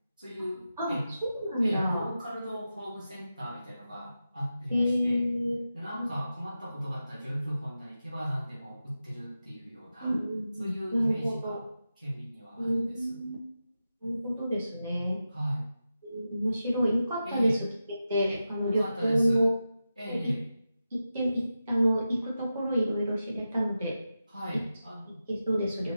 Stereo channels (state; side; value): inverted; both; correlation -0.91